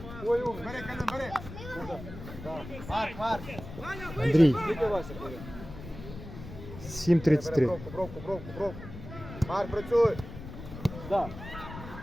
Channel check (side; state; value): left; noise; rumble, 12 dB below the sound